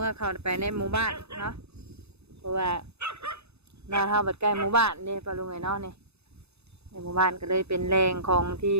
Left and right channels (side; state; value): left; late; 0.80 ms